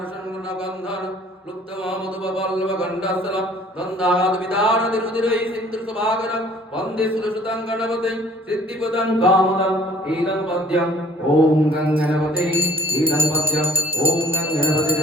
लुप्तवामधुपल्लवगण्डस्थलं दन्दाद्विदारतिरुधिरै सिन्धुसुभागरं वन्दे सुरसुतं गणपतिं सिद्धिपदं कामदं ईदं पद्यम् ओम गंगणपते ईदं पद्यम् ओम गंगणपते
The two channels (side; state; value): both; normal; correlation 0.55